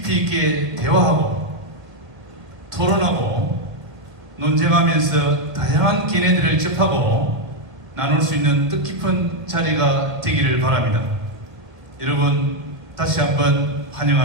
있게 대화하고 토론하고 논쟁하면서 다양한 견해들을 접하고 나눌 수 있는 뜻깊은 자리가 되기를 바랍니다. 여러분 다시 한번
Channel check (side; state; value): left; late; 1.6 ms